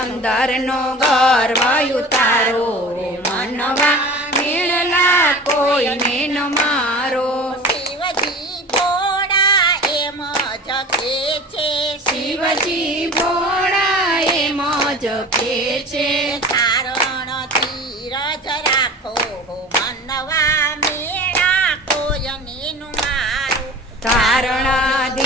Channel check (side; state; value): both; normal; correlation 0.38